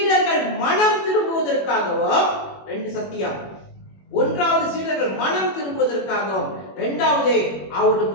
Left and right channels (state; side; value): late; right; 21 ms